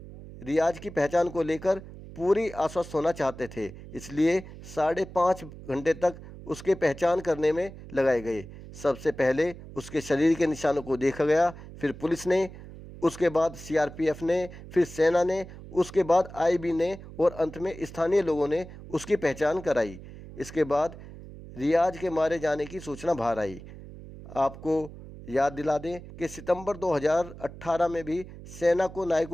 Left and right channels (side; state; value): right; noise; hum, 15 dB below the sound